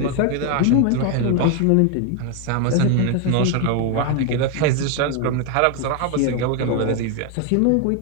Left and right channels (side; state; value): both; different; correlation 0.01